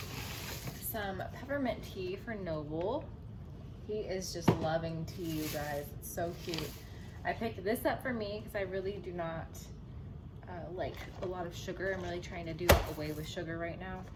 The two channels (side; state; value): both; identical; correlation 1.00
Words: some peppermint tea for Noble. He is just loving tea, you guys. It's so cute. I picked this up for me because I really do not like a lot of sugar. I'm really trying to do away with sugar right now.